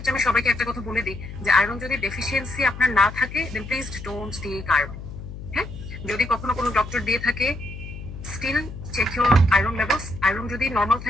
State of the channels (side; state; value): left; noise; hum, 11 dB below the sound